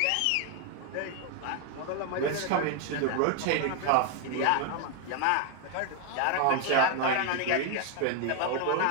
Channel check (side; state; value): both; different; correlation 0.01